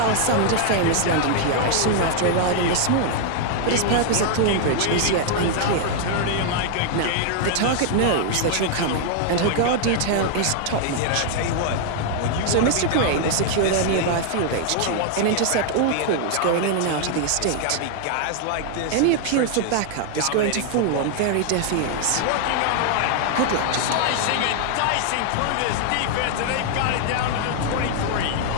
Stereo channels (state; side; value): different; both; correlation 0.00